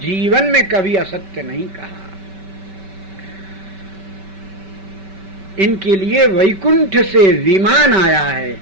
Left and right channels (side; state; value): left; late; 5.2 ms